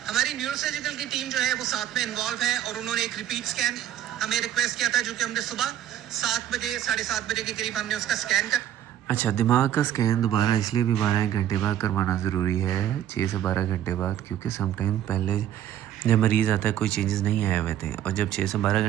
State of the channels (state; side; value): quieter; left; 11.2 dB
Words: ہماری نیورو سرجیکل کی ٹیم جو ہے وہ ساتھ میں انوالو ہے اور انہوں نے ایک ریپیٹ سکین ہمیں ریکویسٹ کیا تھا جو کہ ہم نے صبح 7 بجے 7:30 بجے کے قریب ہم نے اس کا سکین کر. اچھا, دماغ کا سکین دوبارہ اس لیے بھی 12 گھنٹے بعد کروانا ضروری ہے, 6 سے 12 گھنٹے بعد, کیونکہ سم ٹائم پہلے جب مریض آتا ہے کوئی چینجز نہیں آئے ہوئے تھے اور جب 6 سے 12